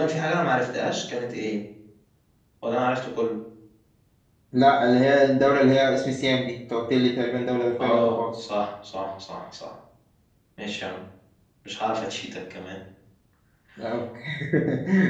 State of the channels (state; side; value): identical; both; correlation 1.00